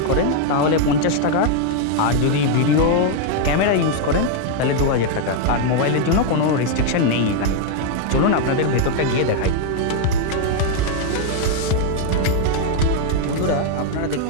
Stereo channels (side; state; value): both; different; correlation 0.00